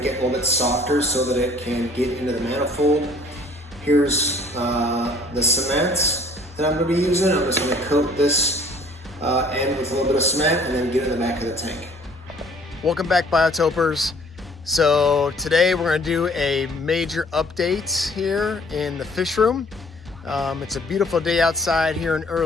it a little bit softer so that it can get into the manifold. Here's the cement that I'm going to be using. I'm just going to coat this end with a little bit of cement and then get it in the back of the tank. Welcome back, Biotopers. So today we're going to do a major update here in the fish room. It's a beautiful day outside here in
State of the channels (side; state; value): both; normal; correlation 0.55